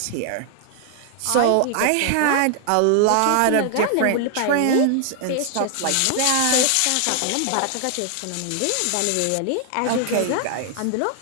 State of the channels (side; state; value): both; different; correlation 0.00